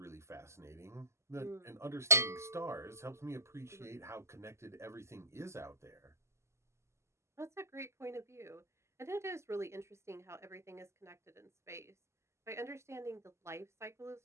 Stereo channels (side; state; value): left; late; 0.13 ms